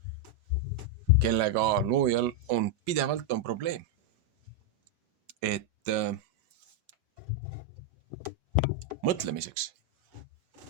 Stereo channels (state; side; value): late; left; 5.0 ms